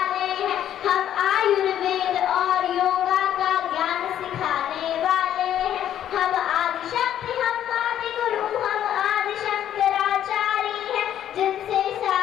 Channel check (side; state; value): right; quieter; 10.8 dB